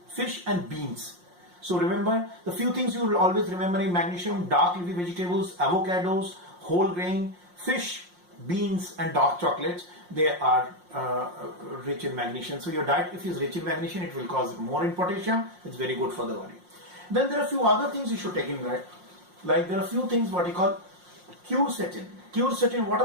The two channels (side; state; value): left; late; 5.6 ms